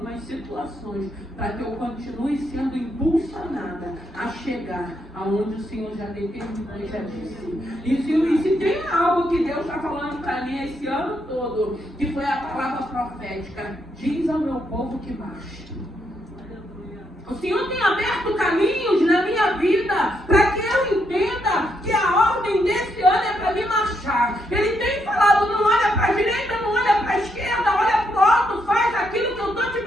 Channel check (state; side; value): normal; both; correlation 0.77